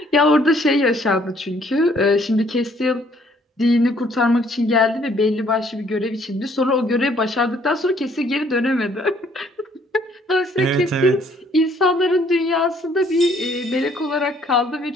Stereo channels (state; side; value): normal; both; correlation 0.63